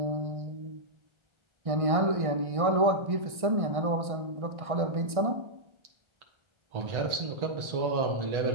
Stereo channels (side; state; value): left; late; 1.6 ms